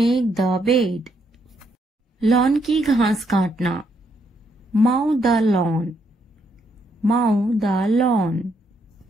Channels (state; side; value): normal; both; correlation 0.75